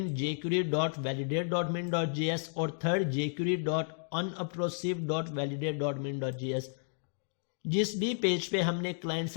jQuery.validate.min.js और थर्ड jQuery.unobtrusive.validate.min.js। जिस भी पेज पे हमने क्लाइंट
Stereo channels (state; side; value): silent; right; digital silence